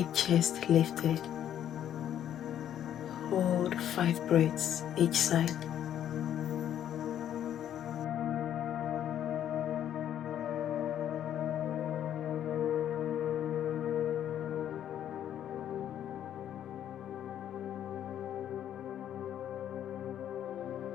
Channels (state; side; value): quieter; right; 10.5 dB